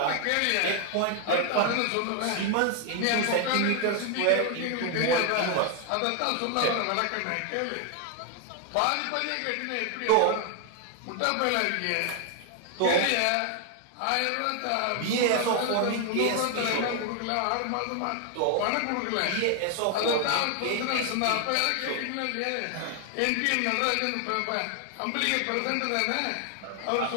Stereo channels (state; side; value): different; both; correlation 0.00